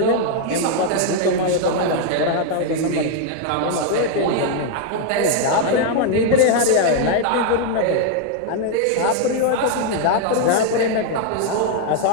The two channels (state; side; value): different; both; correlation 0.00